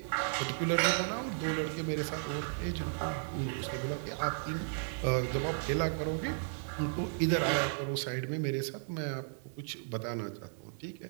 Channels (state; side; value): silent; left; digital silence